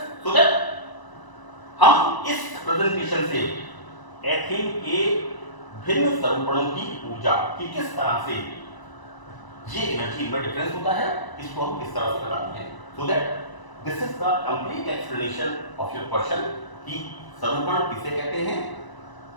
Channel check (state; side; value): late; right; 1.0 ms